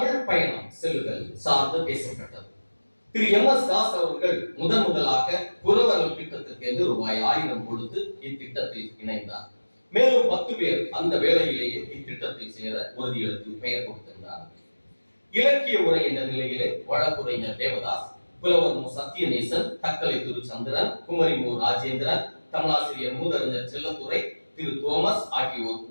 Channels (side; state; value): both; inverted; correlation -1.00